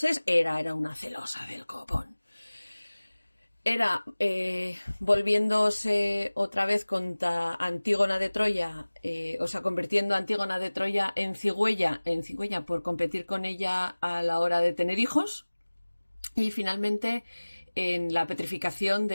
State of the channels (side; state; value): both; inverted; correlation -1.00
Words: Hera era una celosa del copón. Era volviéndose otra vez contra Antígona de Troya, convirtiendo a Antígona de Troya en cigüeña por competir con ella a la hora de tener hijos, y finalmente en la petrificación